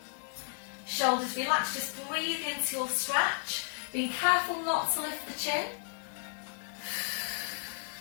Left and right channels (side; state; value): right; silent; digital silence